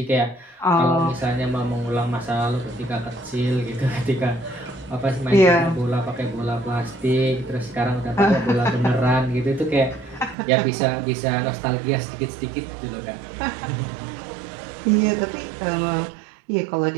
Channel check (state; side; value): drops out; left; at 10.4 s